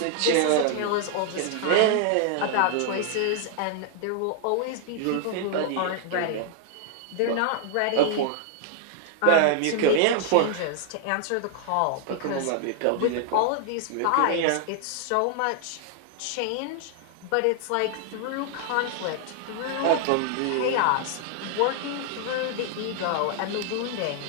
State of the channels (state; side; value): different; both; correlation 0.00